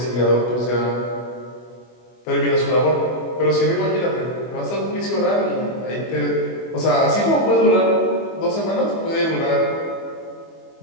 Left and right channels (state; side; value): late; right; 25 ms